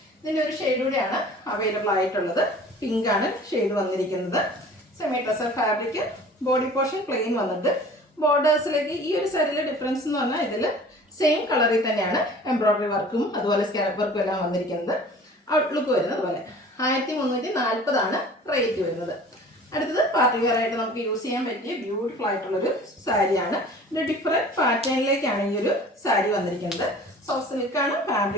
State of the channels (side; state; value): both; normal; correlation 0.45